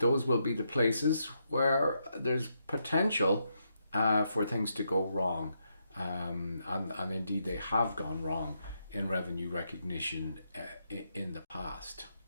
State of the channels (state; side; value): inverted; both; correlation -0.80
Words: will be the places where there's potential for things to go wrong. And indeed they have gone wrong in revenue recognition in the past.